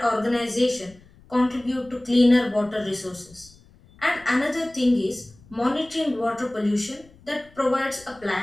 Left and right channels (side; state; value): left; noise; rumble, 26 dB below the sound